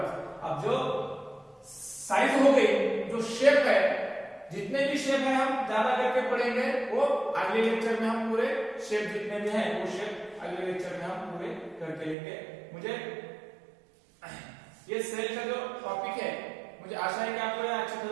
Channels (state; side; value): drops out; left; at 12.2 s